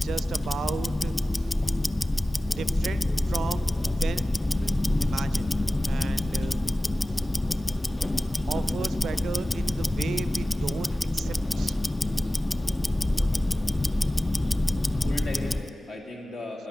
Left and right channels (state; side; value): normal; both; correlation 0.96